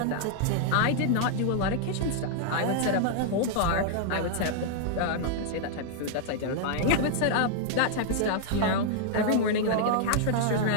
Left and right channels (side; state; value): both; different; correlation -0.01